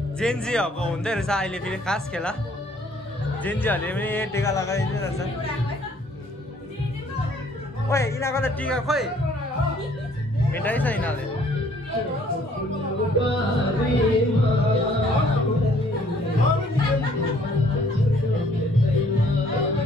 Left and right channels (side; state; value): both; normal; correlation 0.60